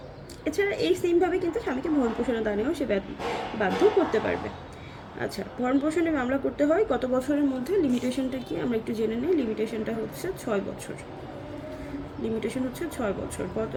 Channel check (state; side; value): identical; both; correlation 1.00